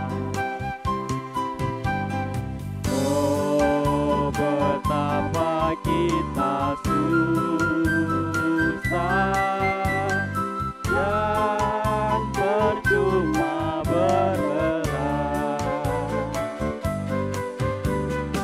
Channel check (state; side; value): identical; both; correlation 1.00